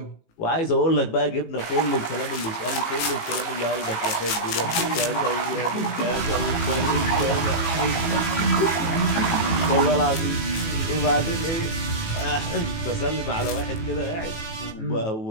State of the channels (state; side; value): late; right; 18 ms